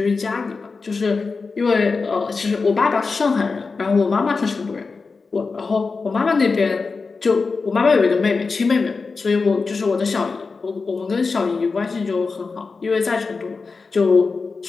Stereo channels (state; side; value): quieter; right; 4.4 dB